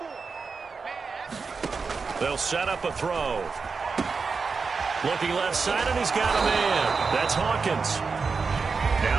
They'll set up a throw. Looking left side, and he's got a man. That's Hawkins.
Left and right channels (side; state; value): left; quieter; 4.9 dB